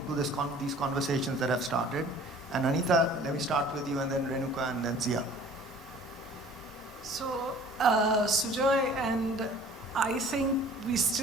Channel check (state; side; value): normal; both; correlation 0.49